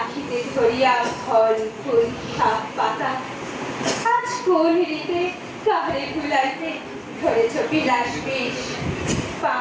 ধরিয়া ফল ফুল শাক পাতা। আজ কোন রীতে কাহারে ভুলাইতে ধরেছ বিলাস বেশ।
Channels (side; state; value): both; identical; correlation 1.00